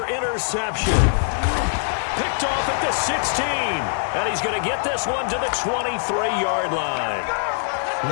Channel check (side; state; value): right; silent; 63 dB below the other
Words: interception. Picked off at the 16. And he's going to get this one to the 23-yard line.